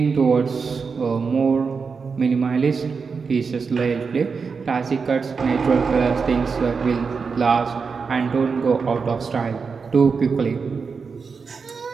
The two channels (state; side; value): quieter; left; 5.2 dB